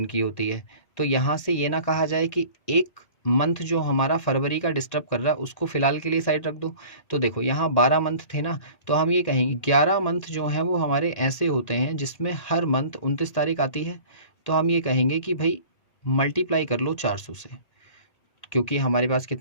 की होती है। तो यहाँ से ये ना कहा जाए कि एक मंथ जो हमारा फरवरी का डिस्टर्ब कर रहा है उसको फिलहाल के लिए साइड रख दो। तो देखो यहाँ 12 मंथ थे ना, तो हम ये कहेंगे 11 मंथ जो हैं वो हमारे ऐसे होते हैं जिसमें हर मंथ 29 तारीख आती है। तो हम ये कहेंगे कि भाई मल्टीप्लाई कर लो 400 से, क्योंकि हमारे पास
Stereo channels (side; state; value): right; late; 1.8 ms